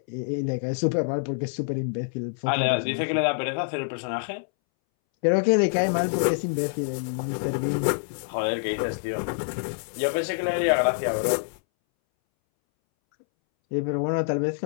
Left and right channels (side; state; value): right; silent; 61 dB below the other